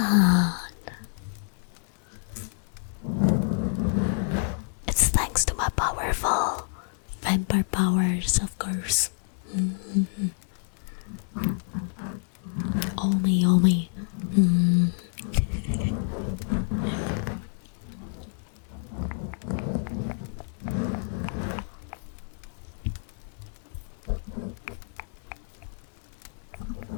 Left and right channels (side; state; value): right; silent; digital silence